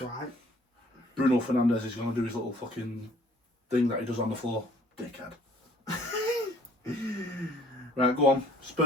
Right. Bruno Fernandes is going to do his little fucking thing that he does on the floor. Dickhead. Right, go on.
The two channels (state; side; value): normal; both; correlation 0.58